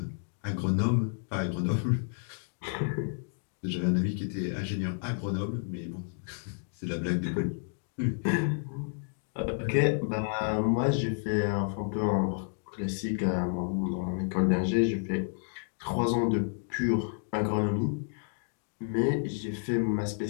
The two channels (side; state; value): right; silent; 57 dB below the other